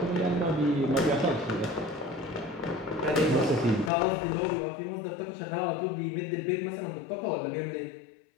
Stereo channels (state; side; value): drops out; right; at 3.9 s